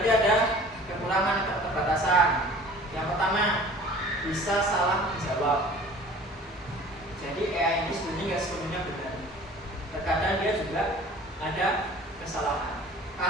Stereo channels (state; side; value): normal; both; correlation 0.46